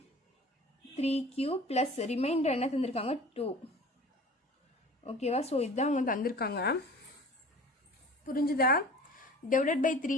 3q plus reminder என்ன தந்திருக்காங்க 2. ஓகேவா? ஸோ இதுதான் அவங்க தந்திருக்காங்க. புரிஞ்சுதா? டிவைடட் பை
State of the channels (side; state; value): both; normal; correlation 0.42